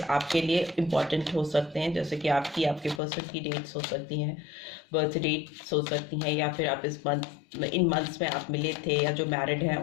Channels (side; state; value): right; drops out; at 3.0 s